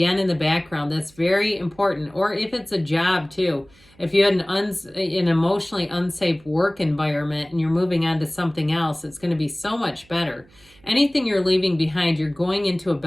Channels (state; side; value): noise; right; hum, 29 dB below the sound